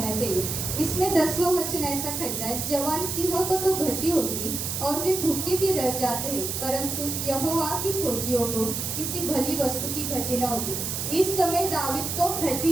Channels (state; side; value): noise; right; hiss, 3 dB below the sound